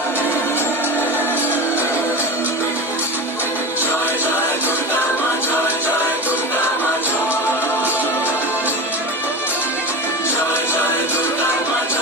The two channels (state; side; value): normal; both; correlation 0.26